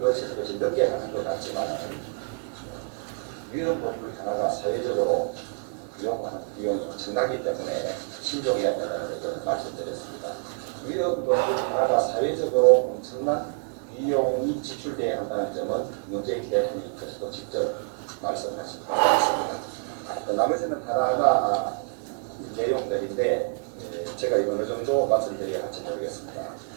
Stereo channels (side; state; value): left; silent; 60 dB below the other